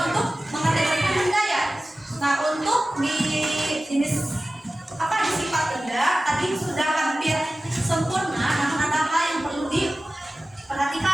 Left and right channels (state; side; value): normal; both; correlation 0.96